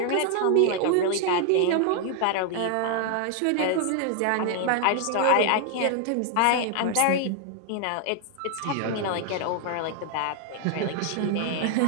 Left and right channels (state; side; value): different; both; correlation 0.00